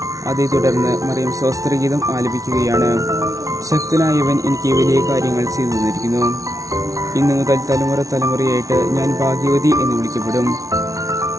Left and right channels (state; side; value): late; left; 0.17 ms